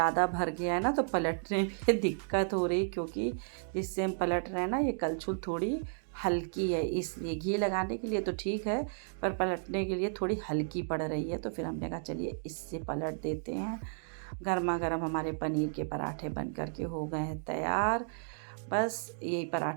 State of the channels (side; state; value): left; silent; digital silence